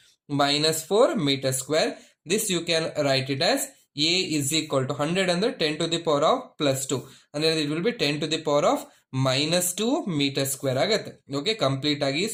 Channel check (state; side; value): identical; both; correlation 1.00